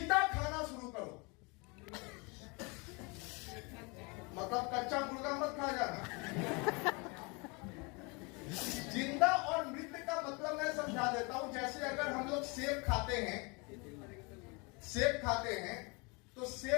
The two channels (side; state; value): right; quieter; 29.6 dB